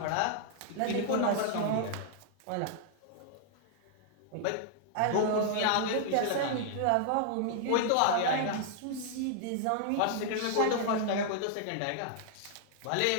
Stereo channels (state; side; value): different; both; correlation -0.01